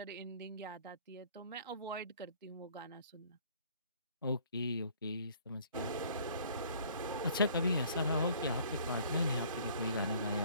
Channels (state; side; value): inverted; both; correlation -0.55